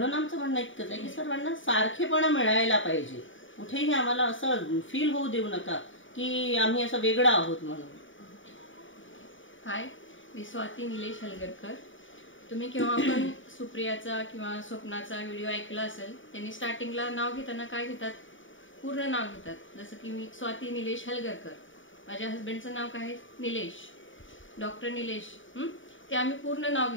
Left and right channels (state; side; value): late; right; 0.56 ms